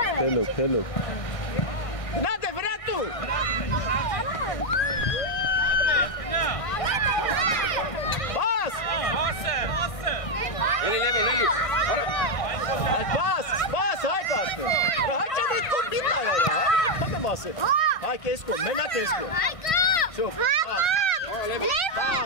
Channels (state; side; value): late; right; 1.6 ms